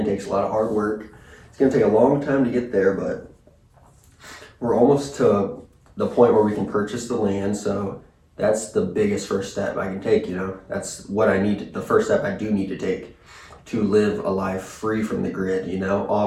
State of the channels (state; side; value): identical; both; correlation 1.00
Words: takes a lot of hard work. It's gonna take a long time to get there, but we're almost to the point where we can purchase the land, so that's the biggest first step I can take, you know. That's what the first step I do need to take to live a life free from the grid, you know,